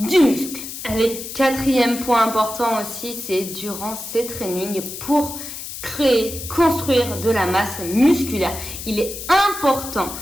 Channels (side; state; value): left; noise; hiss, 9 dB below the sound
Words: muscle. Allez, 4e point important aussi, c'est durant ces trainings pour construire de la masse musculaire. Il est important